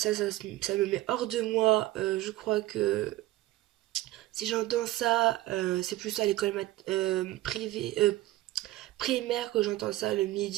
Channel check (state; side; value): quieter; left; 16.8 dB